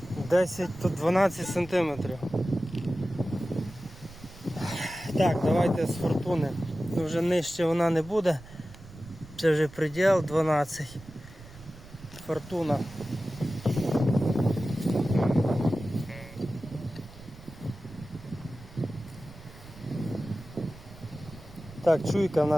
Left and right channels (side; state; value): right; noise; rumble, 18 dB below the sound